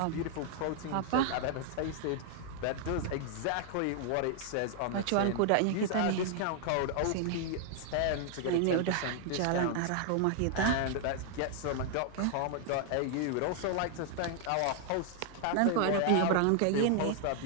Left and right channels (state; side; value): different; both; correlation 0.00